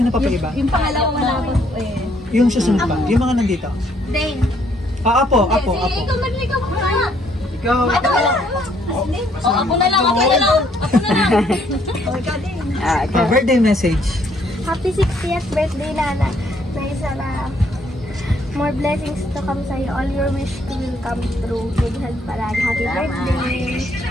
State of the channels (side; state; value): both; normal; correlation 0.68